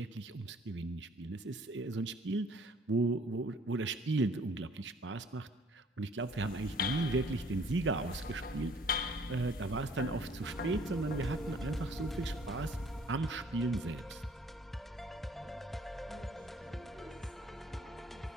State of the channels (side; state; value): both; normal; correlation 0.57